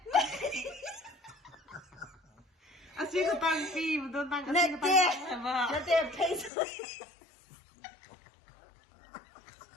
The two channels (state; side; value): drops out; right; at 6.5 s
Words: anh xin cái tăng phi mà tôi tăng cái tăng mà nó tiếc thấy